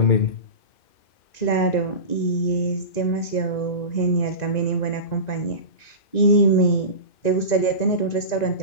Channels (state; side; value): late; right; 1.9 ms